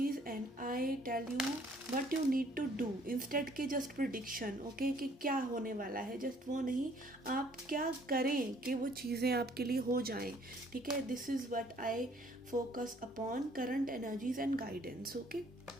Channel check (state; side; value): normal; both; correlation 0.60